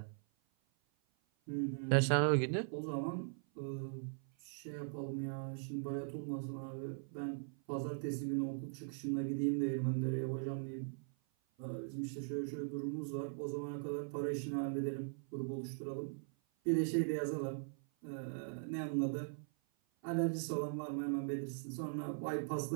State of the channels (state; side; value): silent; left; 51 dB below the other